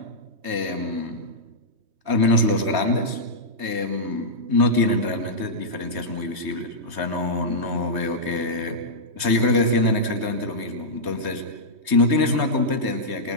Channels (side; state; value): left; late; 3.2 ms